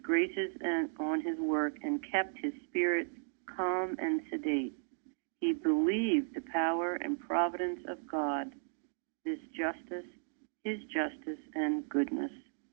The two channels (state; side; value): silent; left; digital silence